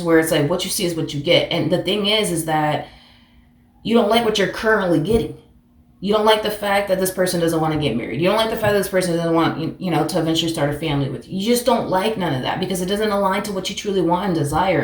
where it's like what you see is what you get. And the thing is that you don't like what you're currently getting. You don't like the fact that this person doesn't want to get married. You don't like the fact that this person doesn't want, to eventually start a family with you. You just don't like none of that because it doesn't align to what you truly want and desire.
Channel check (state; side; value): identical; both; correlation 1.00